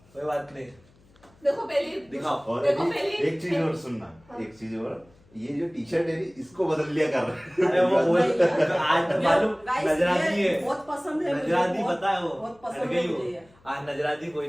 कोई बात नहीं। देखो पहली दिखाओ। और देखो अभी पहली एक चीज और सुनना, एक चीज और, ये जो टी शर्ट है इसको बदल लिया कर रहा अरे वो बोल आज मालूम Guys, नजराती ये है, बहुत पसंद है मुझे, नजराती बहुत- पता है वो बहुत हट पसंद गई है वो मुझे ये। आज नजराती कोई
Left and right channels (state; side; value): noise; left; hum, 30 dB below the sound